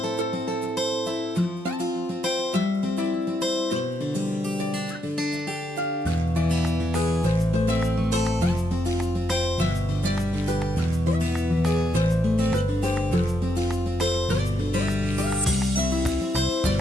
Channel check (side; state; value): both; normal; correlation 0.78